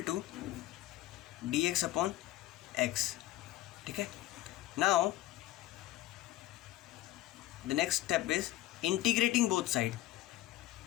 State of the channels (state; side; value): quieter; right; 15.7 dB